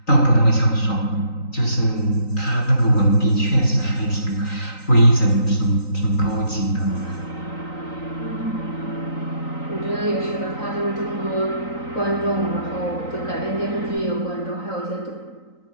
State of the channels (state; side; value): late; right; 3.9 ms